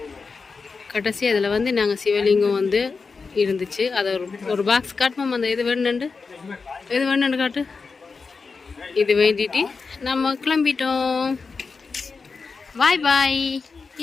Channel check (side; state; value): right; quieter; 4.7 dB